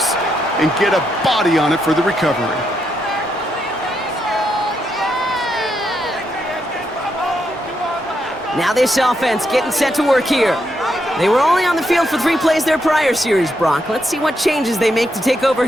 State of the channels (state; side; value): normal; both; correlation 0.80